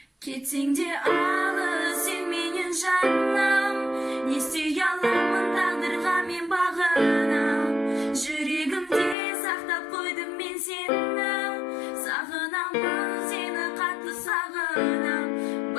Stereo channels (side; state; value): right; drops out; at 9.2 s